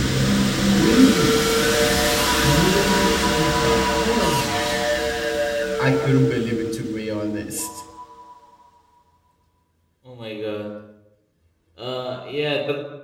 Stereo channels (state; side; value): identical; both; correlation 1.00